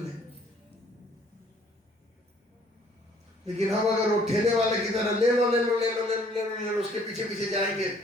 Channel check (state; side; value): normal; both; correlation 0.60